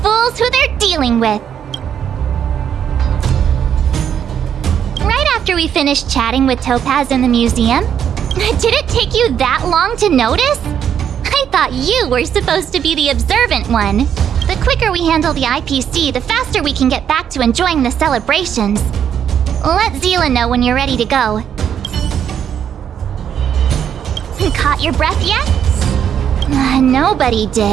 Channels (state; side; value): quieter; left; 8.8 dB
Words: who they're dealing with. Right after we finished chatting with Topaz in the museum, did it take you that long to notice? I thought you were supposed to be the observant one. The quicker we handle the IPC, the faster we can get back to enjoying the celebrations. Let Zila know when you're ready to go. Caught your breath yet? Nobody